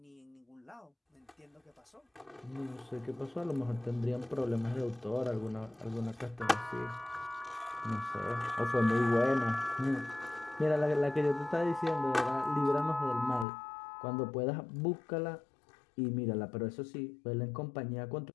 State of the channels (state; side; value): drops out; right; at 13.5 s